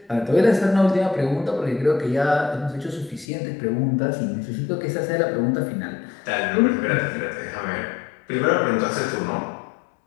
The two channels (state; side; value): drops out; right; at 3.2 s